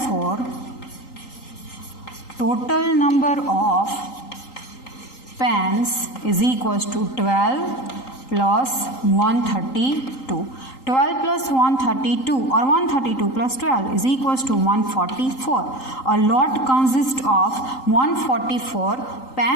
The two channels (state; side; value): late; right; 3.8 ms